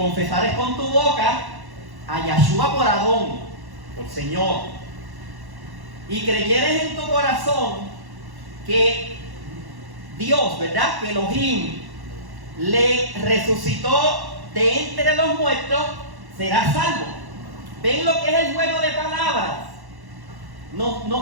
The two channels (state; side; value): late; left; 1.1 ms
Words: con tu boca a Yahshua por Adón, por Señor, y creyeres en tu corazón que Dios, ¿verdad?, que Elohim le resucitó de entre los muertos, serás salvo. ¿Ven lo que es el juego de palabras?